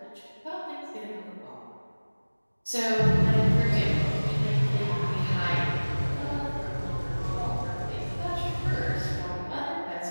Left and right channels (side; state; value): both; inverted; correlation -1.00